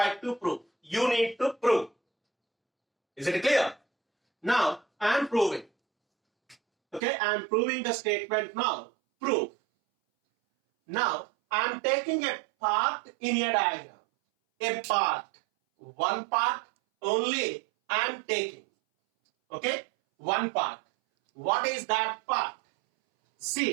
to prove. You need to prove. Is it clear? Now, I am proving. Okay, I am proving the statement now. Prove. Now, I am taking a part in a diagram. A part. One part only I am taking. Okay, one part. What is that part?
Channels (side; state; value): left; drops out; at 7.0 s